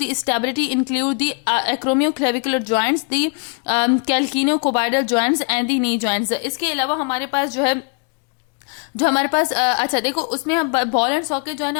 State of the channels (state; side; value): quieter; right; 36.7 dB